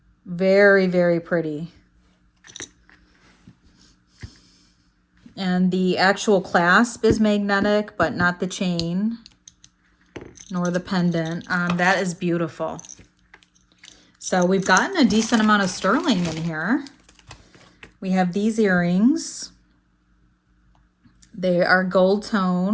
Very, very pretty. And the actual clasp is magnetic, but not the chain, nor the pendant. That is beautiful. So we've gotten a decent amount of sterling in here. We have these earrings. They are gold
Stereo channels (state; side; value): identical; both; correlation 1.00